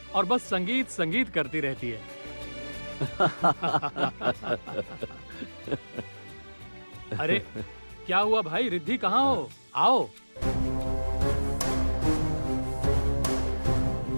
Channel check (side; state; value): both; inverted; correlation -1.00